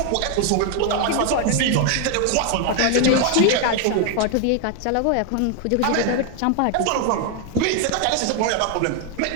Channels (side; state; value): both; different; correlation 0.00